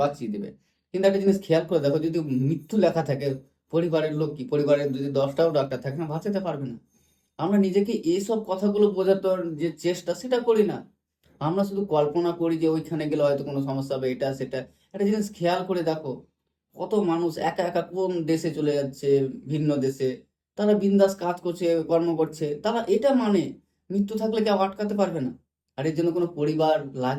বাঁচিয়ে দেবে। কিন্তু একটা জিনিস খেয়াল করে দেখো, যদি মৃত্যু লেখা থাকে, পরিবারের লোক কি, পরিবারের যদি 10টাও ডাক্তার থাকে না, বাঁচাতে পারবে না। আমরা নিজেকে এইসব কথাগুলো বোঝাতে যে চেষ্টা, সেটা করি না। আমরা শুধু কল্পনা করি যে ওইখানে গেলে হয়তো কোনো সমস্যা হবে, এটা সেটা। একটা জিনিস খেয়াল করে দেখো, কত মানুষ একা একা কোন দেশে চলে যাচ্ছে, ভিন্ন দেশে, তারা বিন্দাস কাজ করছে, কর্ম করছে, তারা এটা মানে মৃত্যু থাকলে কেউ আটকাতে পারবে না, আর এর জন্য কোনো পরিবার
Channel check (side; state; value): both; identical; correlation 1.00